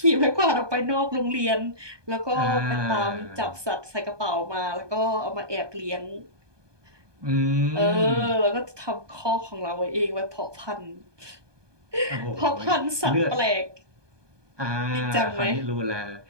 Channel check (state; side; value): late; left; 1.2 ms